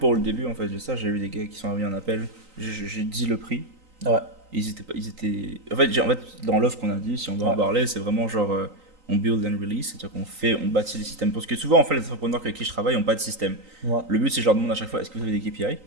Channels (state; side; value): late; left; 3.9 ms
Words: le début, en fait, de ça, j'ai eu des gars qui sont envoyés un appel, j'ai dit le prix. Ils étaient... En fait, dans l'offre qu'on a dit, si on doit en parler, c'est vraiment genre, on build and release, c'est-à-dire on bâtit des systèmes. Parce que souvent, en fait, les entrepreneurs avec qui je travaille n'ont pas de système. Ouais. Le but, c'est que je leur demande à chaque fois, est-ce que vous avez des KPI?